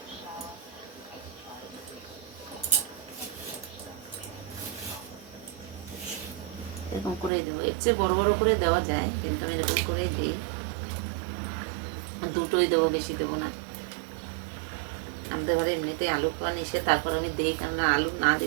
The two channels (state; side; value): drops out; left; at 7.3 s